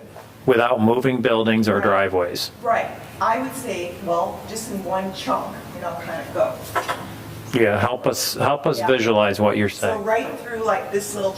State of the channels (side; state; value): both; identical; correlation 1.00